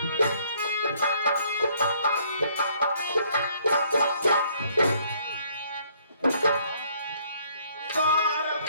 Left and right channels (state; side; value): inverted; both; correlation -0.63